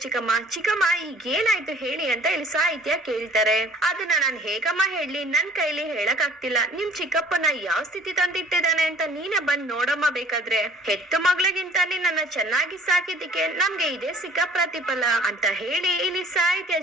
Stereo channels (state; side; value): normal; both; correlation 0.52